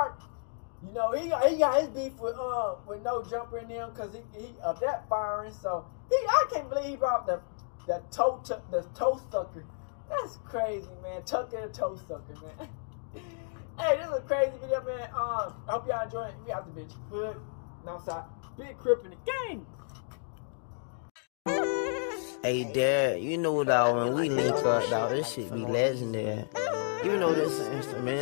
You know, he got his beef with Nojumper and them because he of that firing. So I can't believe he brought the toe sucker. That's crazy, man. Tucker the toe sucker, man. Hey, this is a crazy video, man. I hope y'all enjoy it. We out the bitch. Hood, outside, big crip in the game. Hey, Dad, you know, dog, when we link up, dog, this shit be legendary. You know this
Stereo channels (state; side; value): silent; right; digital silence